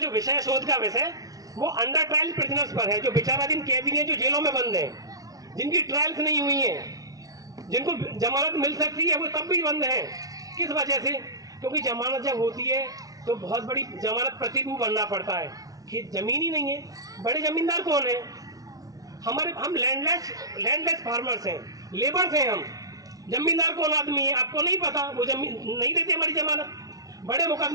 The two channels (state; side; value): late; left; 0.18 ms